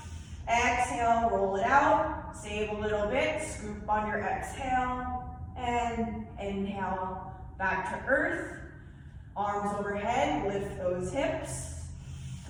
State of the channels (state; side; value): identical; both; correlation 1.00